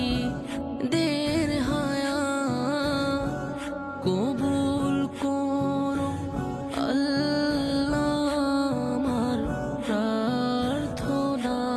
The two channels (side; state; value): both; identical; correlation 1.00